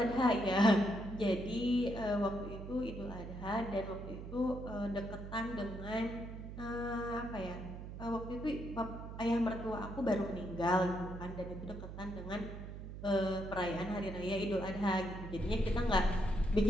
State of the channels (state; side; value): noise; right; hum, 9 dB below the sound